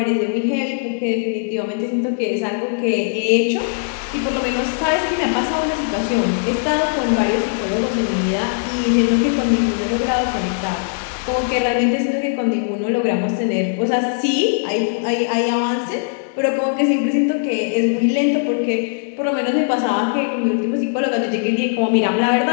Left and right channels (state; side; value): silent; right; 66 dB below the other